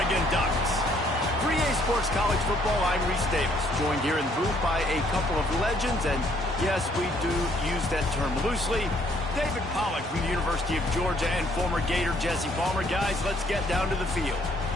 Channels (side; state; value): both; normal; correlation 0.65